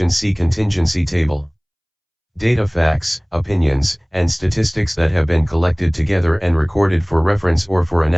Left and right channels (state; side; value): identical; both; correlation 1.00